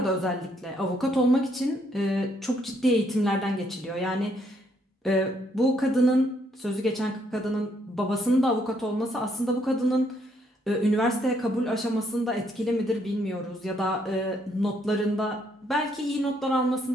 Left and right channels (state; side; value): normal; both; correlation 0.71